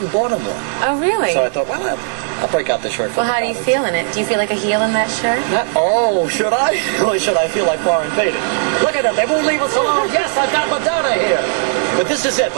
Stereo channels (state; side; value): silent; left; digital silence